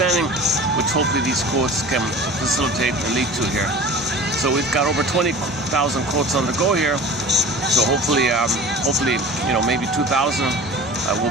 which hopefully these quotes can facilitate and lead to here. So we've got over 20,000 quotes on the go here. So hopefully, maybe 2,000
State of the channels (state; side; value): normal; both; correlation 0.39